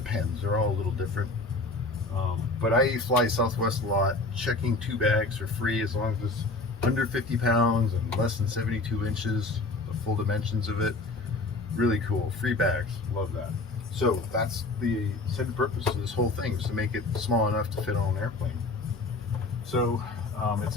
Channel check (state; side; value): quieter; right; 3.2 dB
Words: They're all a little different. But I fly Southwest a lot, checking 2 bags for free as long as it's under 50 pounds and less than 72 inches, the full dimensions of it. Really cool. Free bags. Love that. So that's the intended purpose of this whole thing, is to make it small enough to fit on an airplane. So it's